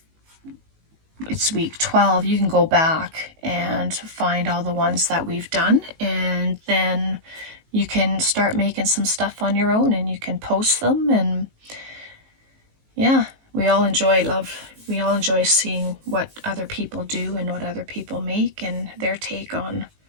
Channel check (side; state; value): left; late; 19 ms